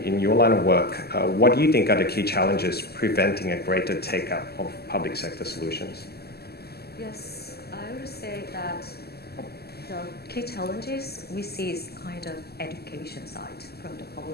your line of work, what do you think are the key challenges preventing a greater take-up of public sector solutions? Yes, I would say that the key challenges we see is kind of education side from the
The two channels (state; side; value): late; right; 0.46 ms